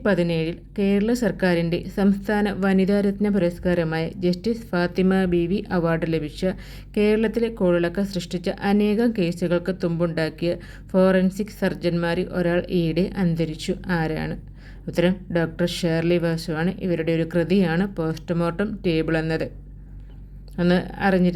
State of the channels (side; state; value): both; identical; correlation 1.00